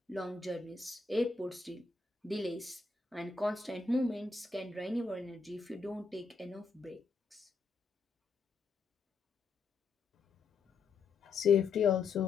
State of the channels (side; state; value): right; quieter; 4.6 dB